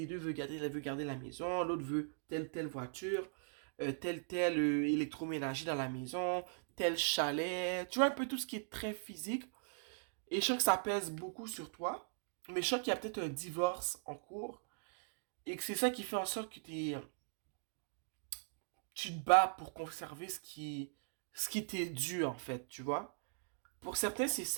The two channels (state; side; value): silent; left; digital silence